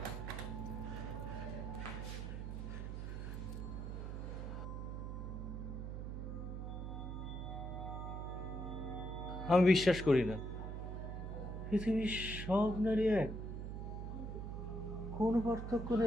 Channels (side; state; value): right; noise; hum, 5 dB below the sound